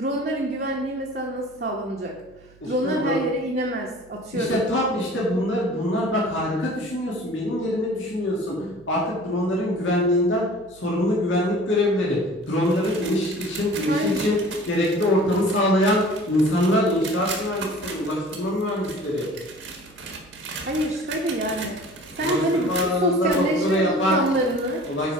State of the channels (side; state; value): right; noise; hum, 27 dB below the sound